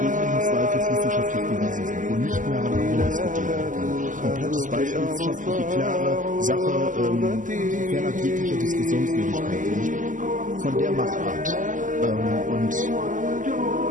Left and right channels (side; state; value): left; late; 0.38 ms